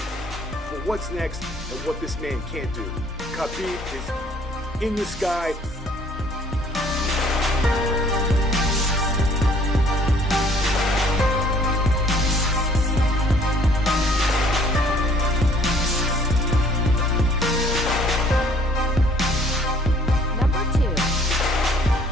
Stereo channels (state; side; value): normal; both; correlation 0.58